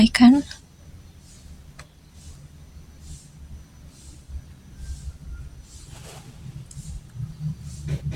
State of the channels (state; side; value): identical; both; correlation 1.00